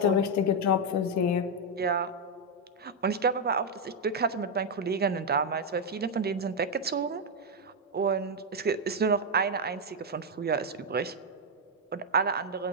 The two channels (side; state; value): both; normal; correlation 0.01